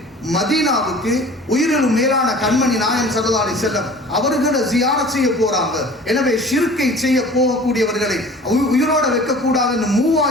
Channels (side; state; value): both; normal; correlation 0.44